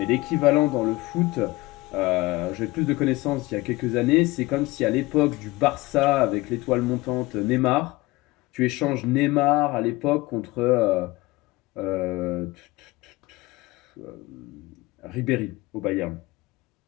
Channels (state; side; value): quieter; right; 21.0 dB